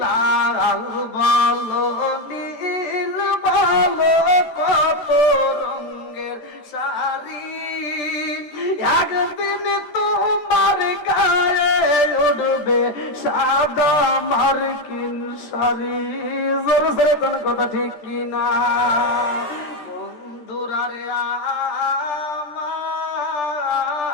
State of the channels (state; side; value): late; right; 13 ms